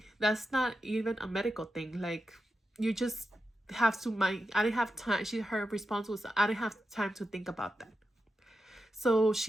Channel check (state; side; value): normal; both; correlation 0.88